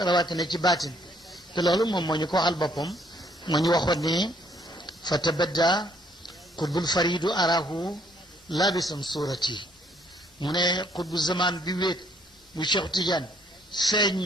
rawatina ci baatin te loolu moom moo ñu ko waxal boppam moo ñu waxoon ne fa tabadda qutbul faridu arahu labisan surati mu ne qutbu zaman bi wéet bu Cheikh Tidiane feeñ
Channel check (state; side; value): normal; both; correlation 0.66